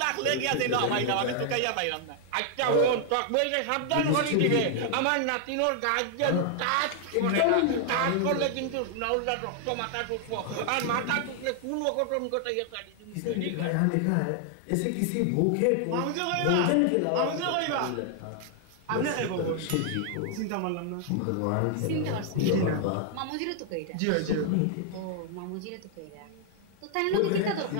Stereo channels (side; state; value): both; different; correlation 0.00